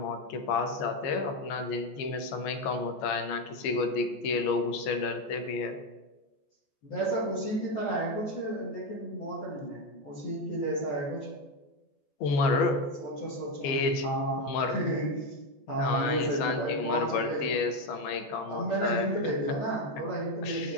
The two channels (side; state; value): right; late; 14 ms